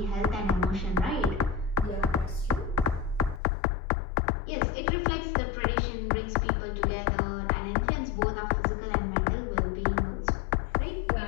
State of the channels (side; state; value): right; drops out; at 3.4 s